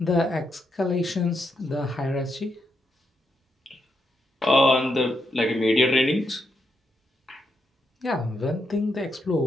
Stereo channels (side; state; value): both; normal; correlation 0.82